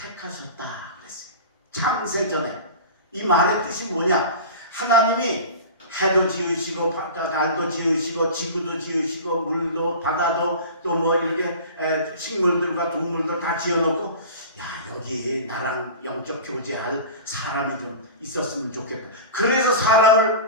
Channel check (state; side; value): inverted; both; correlation -0.34